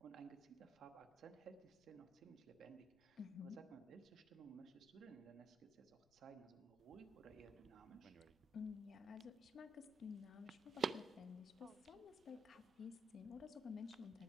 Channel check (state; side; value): noise; left; rumble, 27 dB below the sound